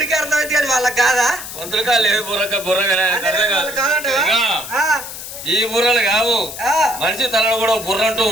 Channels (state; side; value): noise; left; hiss, 10 dB below the sound